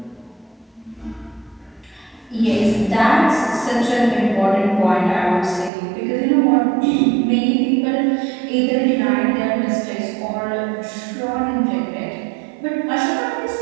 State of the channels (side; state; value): left; drops out; at 5.7 s